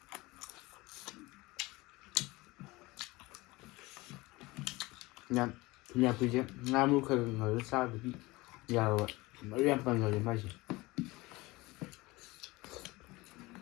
ꯊꯨꯝꯌꯥꯛꯄꯤꯁꯦ ꯉꯥ ꯃꯔꯨ ꯈꯔ ꯉꯧꯔꯒ ꯆꯥꯕꯗꯤ ꯌꯥꯔꯣꯏ ꯃꯔꯨ ꯌꯥꯝ ꯄꯟꯒꯜꯂꯤ ꯃꯥꯏꯁꯦ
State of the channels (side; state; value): right; quieter; 21.7 dB